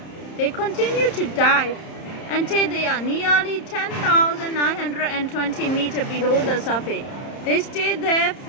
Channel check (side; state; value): right; late; 30 ms